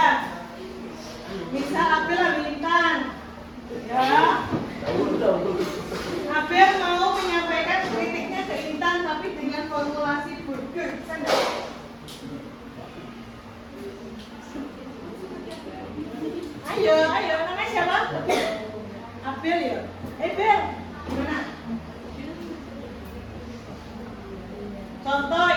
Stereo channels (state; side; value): identical; both; correlation 1.00